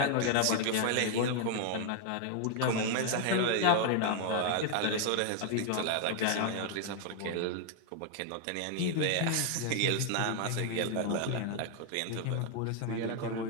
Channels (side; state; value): both; different; correlation 0.00